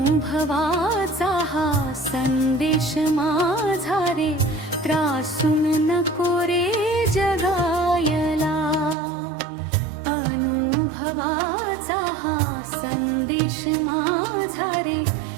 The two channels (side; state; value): left; drops out; at 9.0 s